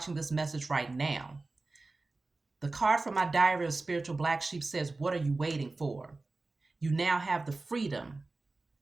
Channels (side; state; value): left; quieter; 3.4 dB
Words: this message right now, the card from my diary of spiritual black sheep says, what are you waiting for? You now have the freedom